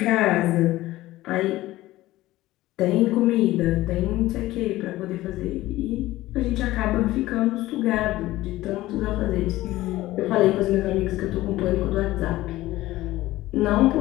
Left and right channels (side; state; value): right; quieter; 16.8 dB